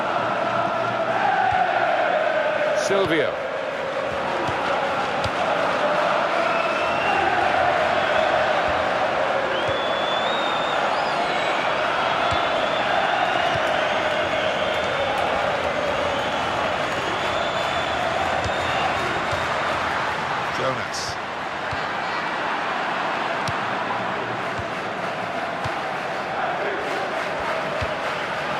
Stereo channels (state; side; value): identical; both; correlation 1.00